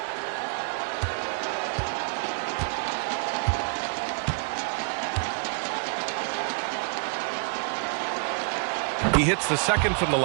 He hits the second from the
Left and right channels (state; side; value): quieter; left; 38.9 dB